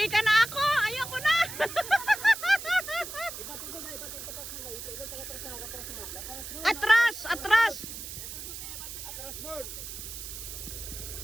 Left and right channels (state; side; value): noise; right; hiss, 9 dB below the sound